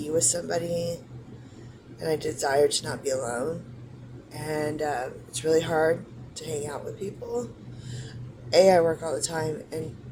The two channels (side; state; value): both; identical; correlation 1.00